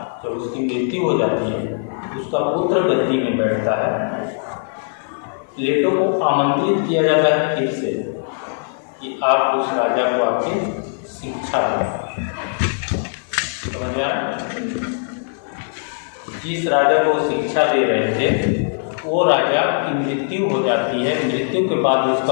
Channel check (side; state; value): right; silent; 56 dB below the other